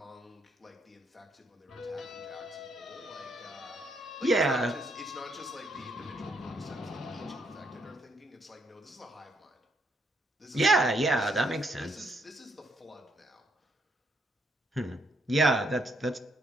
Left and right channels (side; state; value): both; normal; correlation 0.73